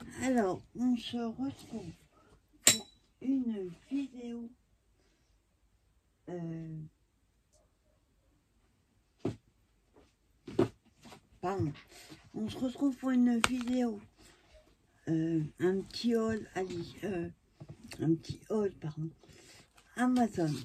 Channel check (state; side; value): identical; both; correlation 1.00